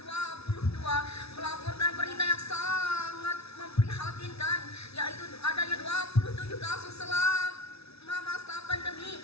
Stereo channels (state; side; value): late; right; 0.79 ms